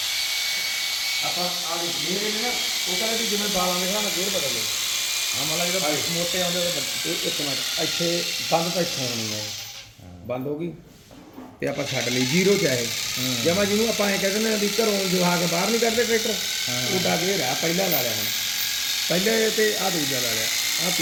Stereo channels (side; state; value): both; identical; correlation 1.00